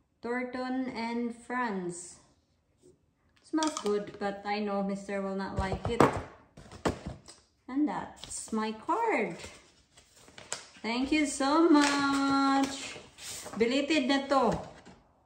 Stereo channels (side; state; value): both; identical; correlation 1.00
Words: Thornton and Friends. Smells good, but I know Mr. will not like it. And that's my card. Thank you so much. Belated na to.